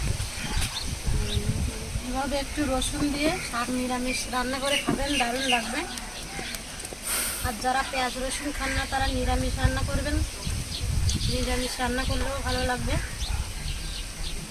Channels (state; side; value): identical; both; correlation 1.00